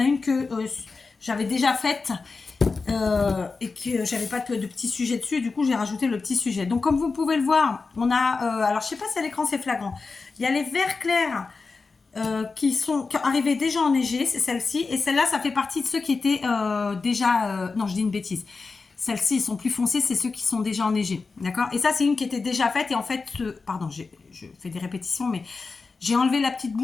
une que j'avais déjà faite. Et que j'avais pas de petit sujet dessus, du coup j'ai rajouté le petit sujet. Donc comme vous pouvez le voir, on a, alors je sais pas si à l'écran c'est flagrant, il y a les verts clairs qui arrivaient déjà enneigés, c'est celle-ci, et celle-là ça fait partie de ceux qui étaient déjà, non je dis une bêtise, celles-ci ils sont plus foncés, c'est ceux qui sont déjà enneigés, d'accord. Et ça c'est une qui était déjà faite, et en fait, pardon, je fais des répétitions, mais j'ai enlevé la petite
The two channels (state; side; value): quieter; right; 4.3 dB